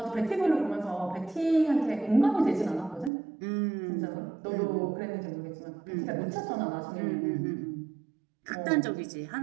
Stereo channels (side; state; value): left; drops out; at 3.1 s